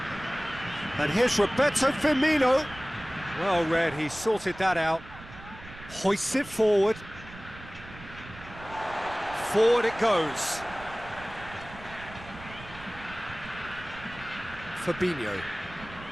And here's Roberto Firmino. Well read, he sorted that out. Hoists it forward. Forward it goes. Fabinho.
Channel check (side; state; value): right; noise; rumble, 17 dB below the sound